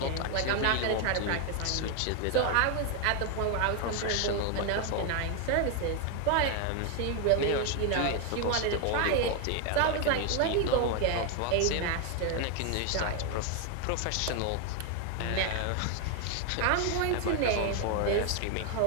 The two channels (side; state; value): both; different; correlation 0.01